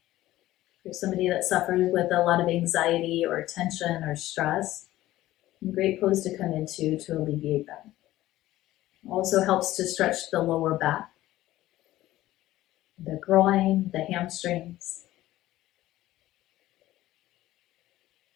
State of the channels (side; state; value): right; quieter; 15.6 dB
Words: For somebody that suffers with a lot of anxiety or tension or stress, a great pose to come into to alleviate that. Also helps to stretch the lower back, the groin, the hamstrings.